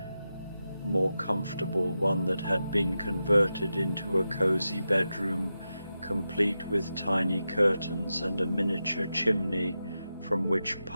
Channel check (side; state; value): both; inverted; correlation -0.90